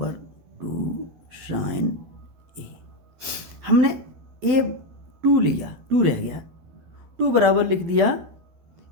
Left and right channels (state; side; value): late; left; 12 ms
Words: 2 साइन ए। हमने ए 2 लिया, 2 रह गया, 2 बराबर लिख दिया,